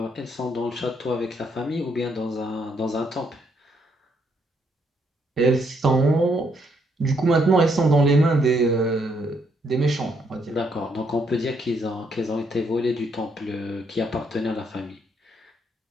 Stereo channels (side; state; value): both; normal; correlation 0.73